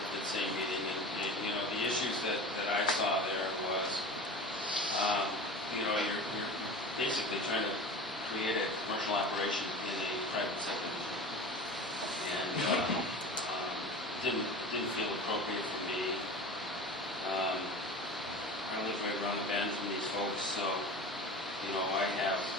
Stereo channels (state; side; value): normal; both; correlation 0.34